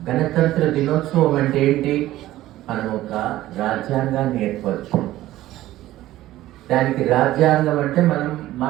గణతంత్ర దినోత్సవం అంటే ఏంటి? మనం ఒక రాజ్యాంగాన్ని ఏర్పరచు. దానికి రాజ్యాంగం అంటే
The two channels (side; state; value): left; quieter; 15.2 dB